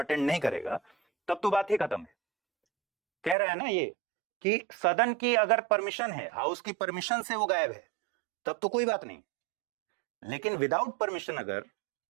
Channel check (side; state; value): left; drops out; at 3.4 s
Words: नहीं करेगा, तब तो बात ही खत्म है। कह रहा है ना ये कि सदन की अगर परमिशन है, हाउस की परमिशन से वो गायब है, तब तो कोई बात नहीं। लेकिन विदाउट परमिशन अगर